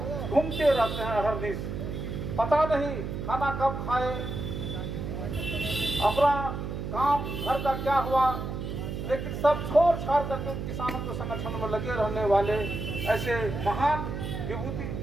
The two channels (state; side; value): noise; right; hum, 5 dB below the sound